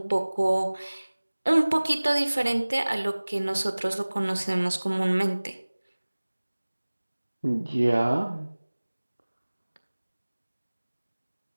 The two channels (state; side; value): inverted; both; correlation -1.00